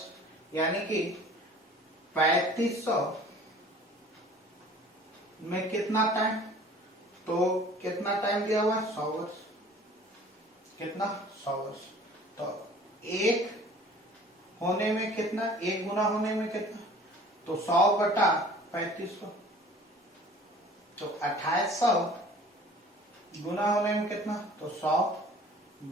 यानी कि 3500 में कितना टाइम, तो कितना टाइम दिया हुआ है 100 वर्ष, कितना 100 वर्ष। तो एक होने में कितना, एक गुना होने में कितना, तो 100 बटा 3500। तो 2800 गुना होने में कितना, तो 100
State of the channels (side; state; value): both; normal; correlation 0.48